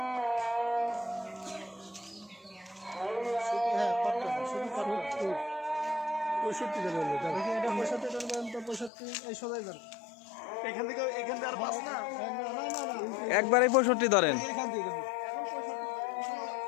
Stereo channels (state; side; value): drops out; right; at 8.9 s